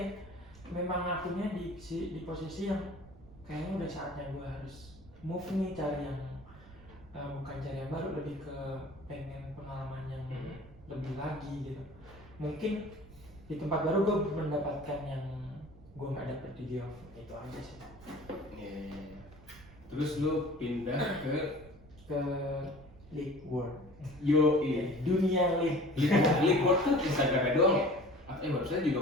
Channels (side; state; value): right; noise; rumble, 21 dB below the sound